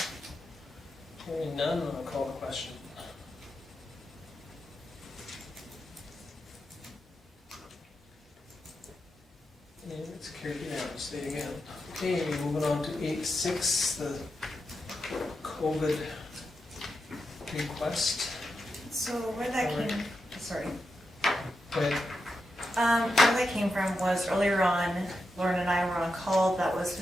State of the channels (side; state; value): both; normal; correlation 0.87